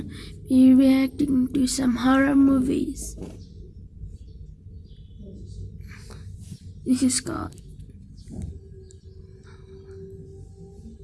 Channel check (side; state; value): both; identical; correlation 1.00